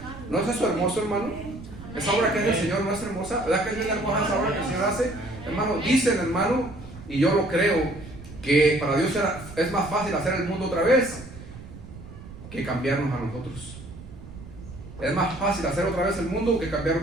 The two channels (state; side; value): noise; right; rumble, 15 dB below the sound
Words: ¿No es eso hermoso, hermano? Esa obra que es del Señor no es hermosa. ¿Verdad que es bien hermosa esa obra que el Señor hace? Hermano, dicen, hermano, y yo lo creo, que para Dios es más fácil hacer el mundo otra vez que cambiarnos a nosotros. Es más fácil hacer otra vez el mundo que